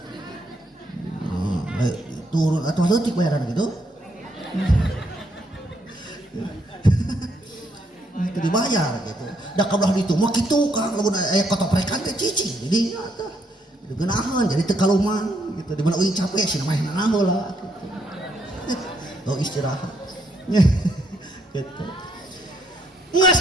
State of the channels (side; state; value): both; normal; correlation 0.73